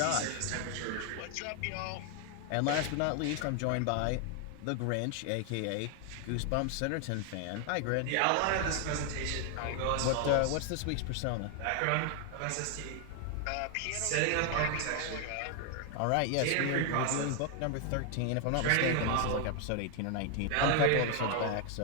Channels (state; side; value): different; both; correlation 0.00